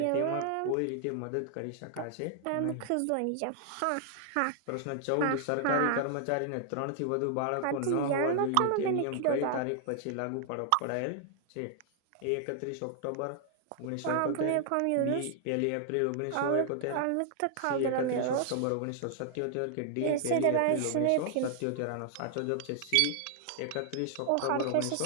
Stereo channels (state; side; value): different; both; correlation 0.00